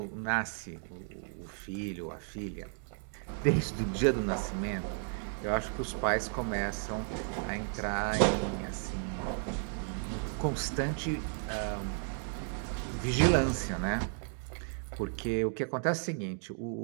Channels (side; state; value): left; silent; 55 dB below the other